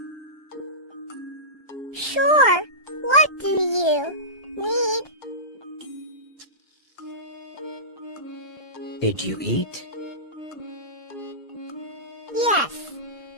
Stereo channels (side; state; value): right; late; 1.2 ms